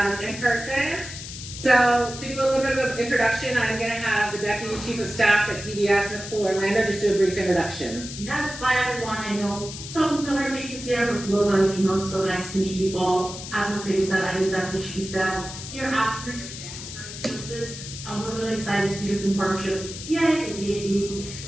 in person. So to do a little bit of an introduction, I'm going to have the Deputy Chief of Staff at DVS, Nicole Orlando, just do a brief introduction. That's fine, everyone. I know some familiar faces here, but we'll let you know. So nice to meet you all. As Mercedes said, I'm the Deputy Chief of Staff here at Services. We're really excited to do this in partnership with PA, the VAB,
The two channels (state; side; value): noise; left; hiss, 10 dB below the sound